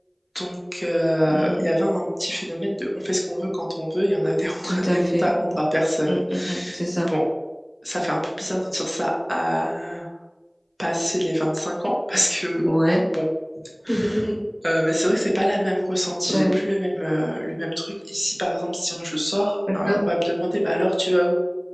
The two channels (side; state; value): both; identical; correlation 1.00